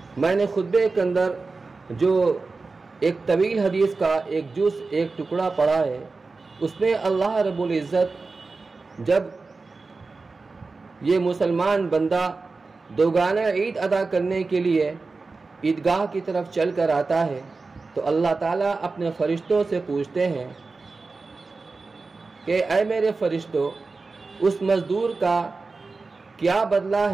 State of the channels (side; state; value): left; quieter; 4.0 dB